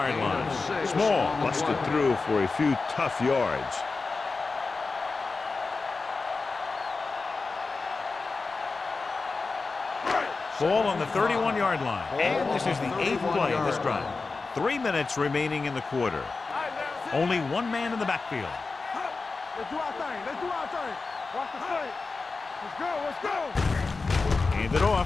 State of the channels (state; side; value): quieter; right; 4.0 dB